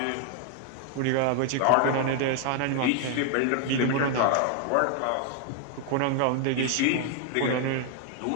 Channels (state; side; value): different; both; correlation 0.00